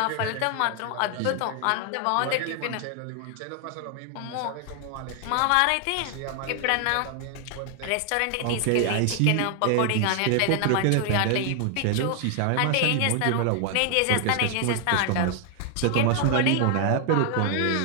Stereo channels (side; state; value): both; different; correlation 0.00